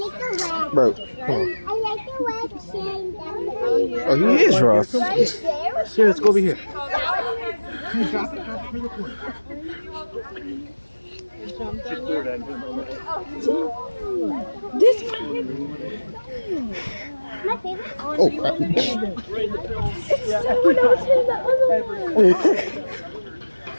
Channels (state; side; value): inverted; both; correlation -1.00